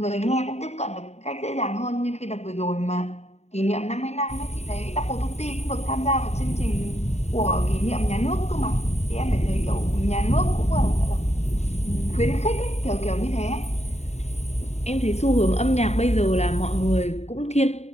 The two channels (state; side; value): late; right; 0.32 ms